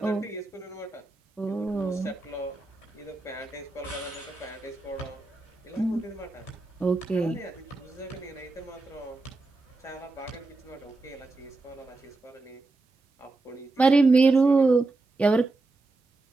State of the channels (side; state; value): left; quieter; 3.3 dB